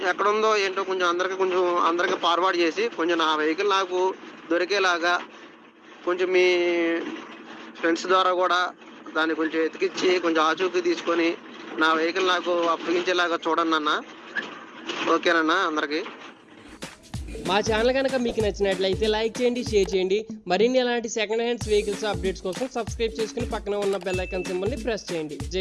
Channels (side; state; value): both; identical; correlation 1.00